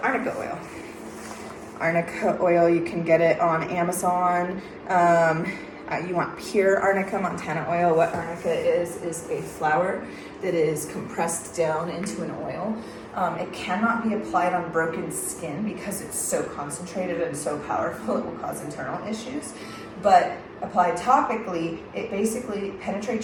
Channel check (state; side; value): identical; both; correlation 1.00